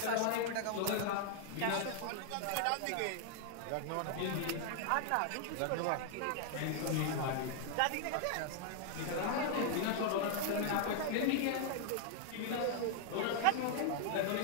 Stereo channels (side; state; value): both; different; correlation 0.00